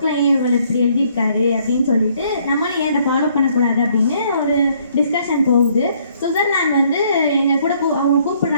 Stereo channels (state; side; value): inverted; both; correlation -0.66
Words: ஏன் இவர் இப்படி எழுதியிருக்காரு அப்படின்னு சொல்லிட்டு நம்மளும் ஏன் அதை ஃபாலோ பண்ணக்கூடாது அப்படின்னு ஒரு டிஸ்கஷன் போகுது. சுவிட்சர்லாந்து எங்கள் கூட அவங்க